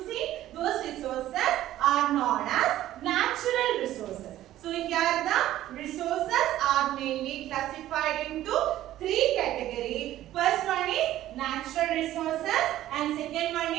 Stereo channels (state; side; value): quieter; left; 13.7 dB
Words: those resources are known as natural resources. So here the resources are mainly classified into three categories. First one is natural resources and second one